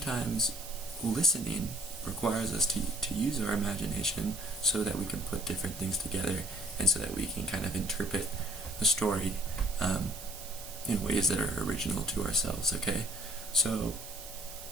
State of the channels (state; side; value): noise; right; hiss, 12 dB below the sound